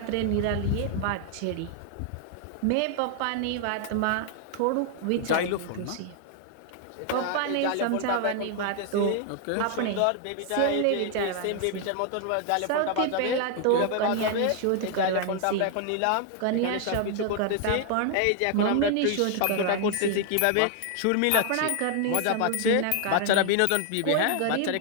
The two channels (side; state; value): both; different; correlation 0.00